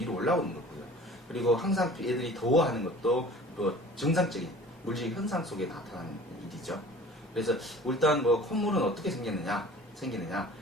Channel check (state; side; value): normal; both; correlation 0.45